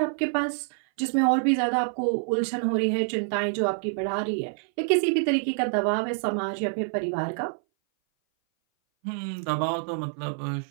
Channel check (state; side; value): silent; left; 58 dB below the other